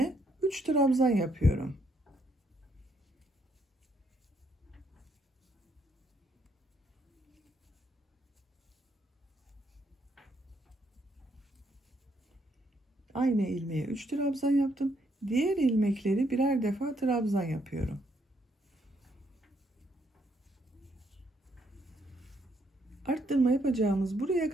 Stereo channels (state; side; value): normal; both; correlation 0.73